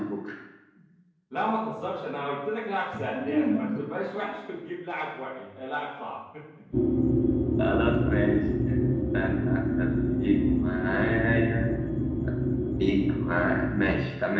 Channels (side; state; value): both; identical; correlation 1.00